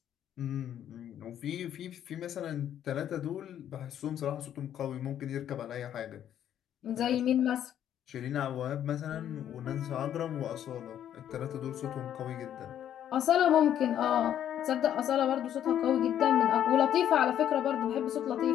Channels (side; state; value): right; quieter; 10.4 dB